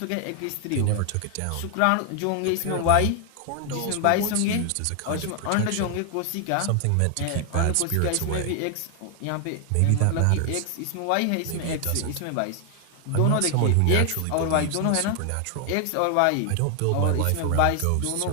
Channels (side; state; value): both; different; correlation 0.00